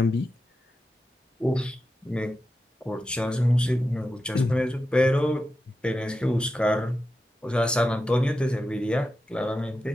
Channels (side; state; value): both; normal; correlation 0.90